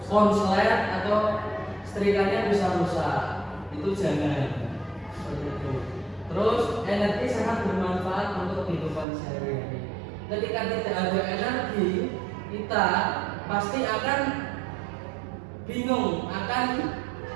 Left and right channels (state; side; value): drops out; left; at 9.1 s